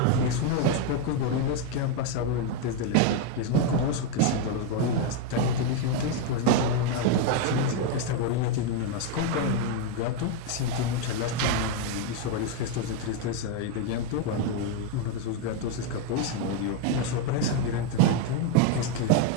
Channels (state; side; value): different; both; correlation 0.01